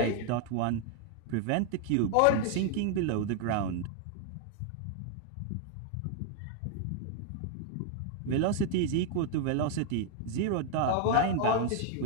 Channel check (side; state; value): both; different; correlation 0.00